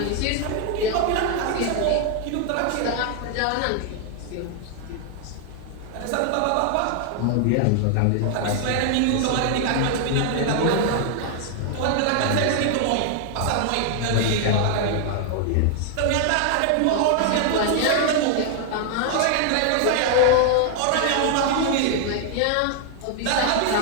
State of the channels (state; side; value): different; both; correlation 0.00